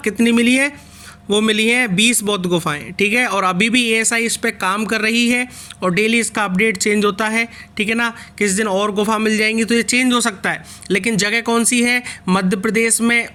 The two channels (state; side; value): identical; both; correlation 1.00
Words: कितनी मिली है? वो मिली हैं 20 बौद्ध गुफाएं, ठीक है। और अभी भी एएसआई इस पर काम कर रही है और डेली इसका अपडेट चेंज होता है, ठीक है ना। किस दिन और गुफा मिल जाएंगी तो ये चेंज हो सकता है, लेकिन जगह कौन सी है? मध्य प्रदेश में